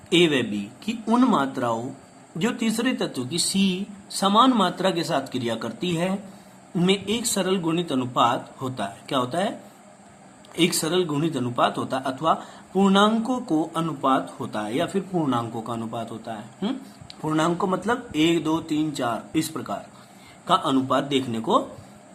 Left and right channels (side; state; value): both; identical; correlation 1.00